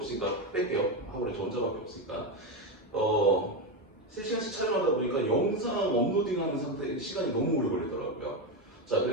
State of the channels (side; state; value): both; normal; correlation 0.11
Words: 뺄게요. 학원에 저 혼자밖에 없으니까 3시간씩 촬영하다 보니까 영상 업로딩하는 상태 시간이 너무 오래 걸리더라고요. 자,